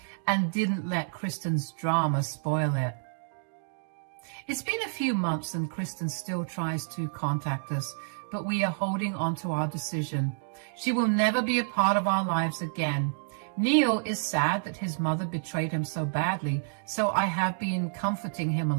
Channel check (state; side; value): silent; left; digital silence